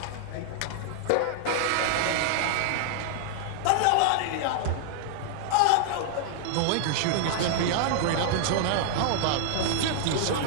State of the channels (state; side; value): different; both; correlation -0.01